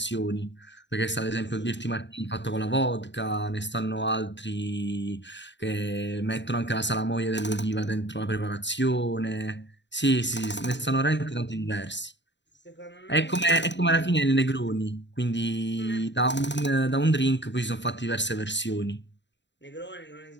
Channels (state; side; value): late; right; 0.52 ms